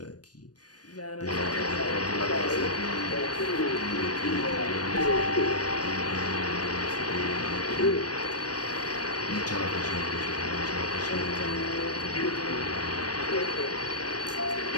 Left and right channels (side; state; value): right; late; 0.69 ms